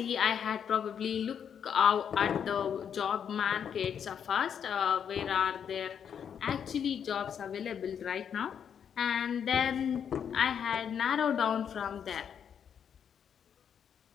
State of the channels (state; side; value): quieter; right; 8.0 dB